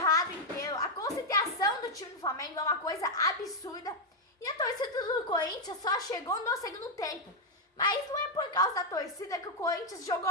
inteiro. A concentração do time do Flamengo é uma coisa absurda. E a torcida do Corinthians só chegou no segundo tempo. Mas não é por causa da torcida que o Corinthians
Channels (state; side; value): normal; both; correlation 0.00